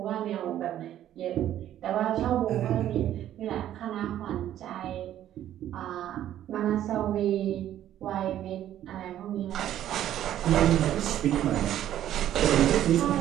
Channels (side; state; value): left; quieter; 11.8 dB